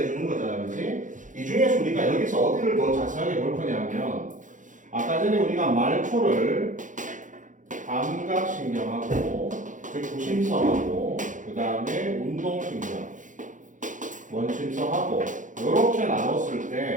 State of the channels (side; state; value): left; late; 0.37 ms